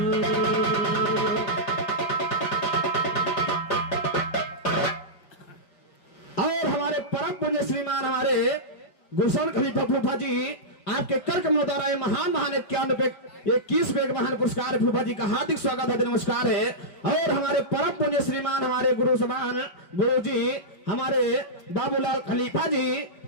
और हमारे परम पुण्य श्रीमान हमारे गुलशन खलीफा फूफा जी आपके कर कमलों द्वारा ये महान महान 21 महान पुरस्कार फूफा जी का हार्दिक स्वागत है, नमस्कार है। और हमारे परम पुण्य श्रीमान हमारे गुरु समान गुरु जी हमारे बाबूलाल खलीफा जी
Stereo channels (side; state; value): right; late; 5.3 ms